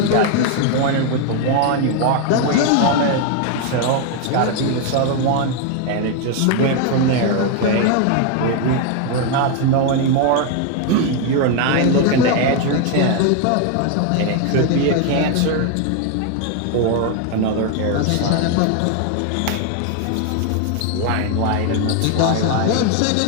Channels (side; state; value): both; different; correlation 0.01